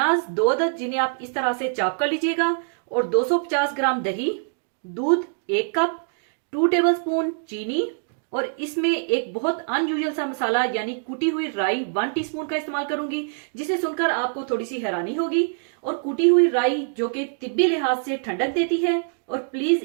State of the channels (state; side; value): silent; left; digital silence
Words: 2 अदद, जिन्हें आप इस तरह से चॉप कर लीजिएगा, और 250 ग्राम दही, दूध 1 कप, 2 टेबलस्पून चीनी, और इसमें एक बहुत अनयूजुअल सा मसाला यानी कुटी हुई राई 1 टीस्पून का इस्तेमाल करूंगी, जिसे सुनकर आपको थोड़ी सी हैरानी होगी। और कुटी हुई राई जो कि तिब्बी लिहाज से ठंडक देती है, और प्लीज